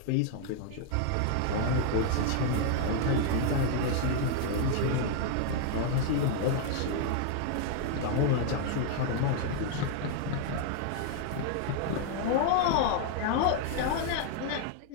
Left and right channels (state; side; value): different; both; correlation 0.00